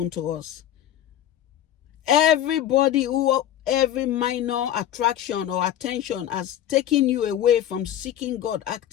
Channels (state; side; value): quieter; right; 11.4 dB